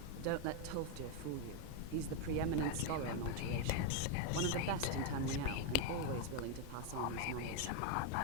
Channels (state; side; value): different; both; correlation 0.01